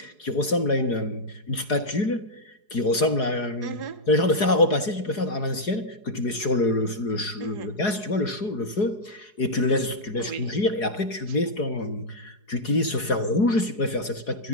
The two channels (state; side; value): late; right; 4.8 ms